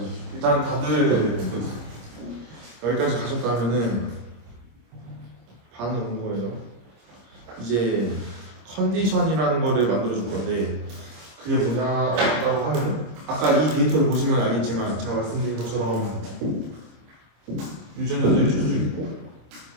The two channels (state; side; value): late; left; 25 ms